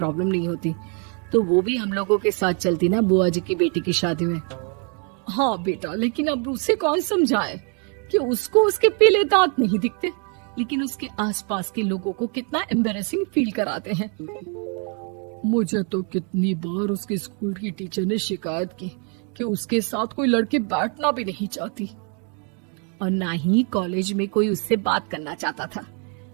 नहीं होती, तो वो भी हम लोगों के साथ चलती ना बुआ जी की बेटी की शादी में। हाँ बेटा, लेकिन अब उसे कौन समझाए कि उसको उसके पीले दांत नहीं दिखते, लेकिन उसके आसपास के लोगों को कितना एम्बैरेसिंग फील कराते हैं। मुझे तो कितनी बार उसके स्कूल की टीचर ने शिकायत की कि उसके साथ कोई लड़की बैठना भी नहीं चाहती, और ना ही कॉलेज में कोई उससे बात करना चाहता था।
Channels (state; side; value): quieter; left; 38.8 dB